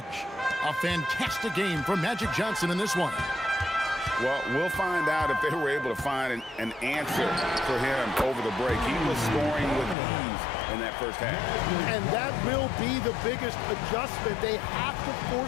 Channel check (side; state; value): right; drops out; at 10.0 s